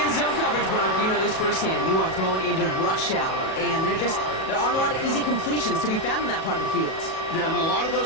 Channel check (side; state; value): right; late; 37 ms